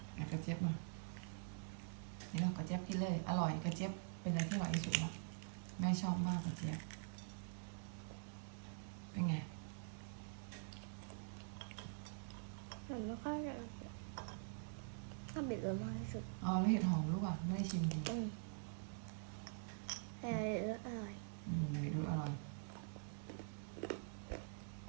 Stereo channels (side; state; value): left; silent; digital silence